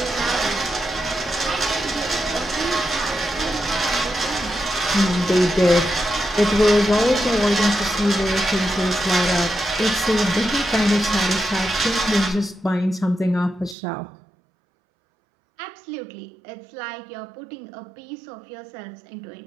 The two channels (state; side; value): drops out; left; at 13.8 s